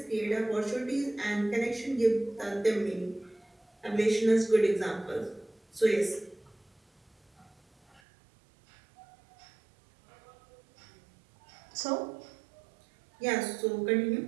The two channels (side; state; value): left; drops out; at 8.0 s